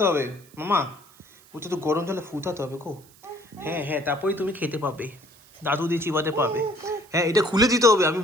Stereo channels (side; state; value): right; noise; hiss, 26 dB below the sound